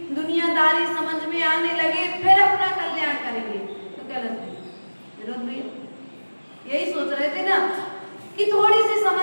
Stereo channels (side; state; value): both; inverted; correlation -1.00